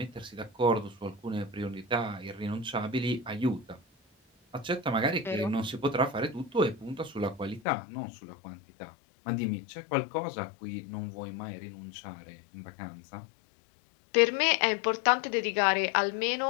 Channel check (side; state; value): right; drops out; at 7.6 s